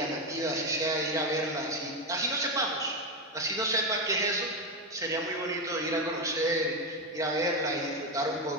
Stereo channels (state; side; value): normal; both; correlation 0.11